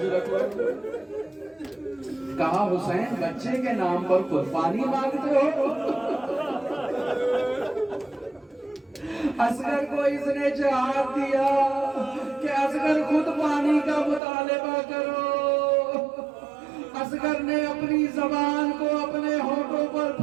کہا حسین بچے کے نام پر قربانی مانگتے ہو؟ اصغر کو اس نے جہاد دیا کہ اصغر خود پانی کا مطالبہ کرو۔ اصغر نے اپنی زبان کو اپنے ہونٹوں پر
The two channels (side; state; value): left; drops out; at 14.2 s